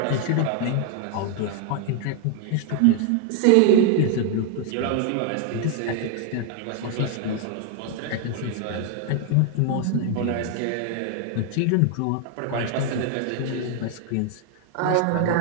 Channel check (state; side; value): different; both; correlation 0.00